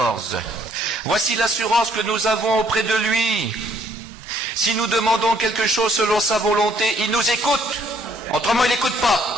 Voici l'assurance que nous avons auprès de lui. Si nous demandons quelque chose selon sa volonté, il nous écoute. Autrement, il n'écoute pas.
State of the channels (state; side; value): normal; both; correlation 0.65